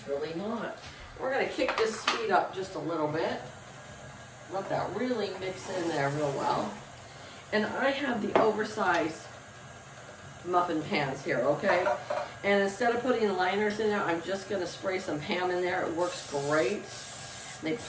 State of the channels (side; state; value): both; identical; correlation 1.00